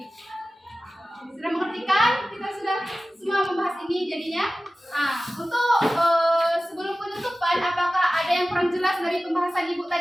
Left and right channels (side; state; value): both; normal; correlation 0.96